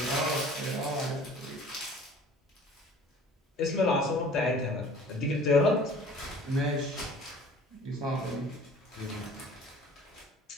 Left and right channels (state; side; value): normal; both; correlation 0.47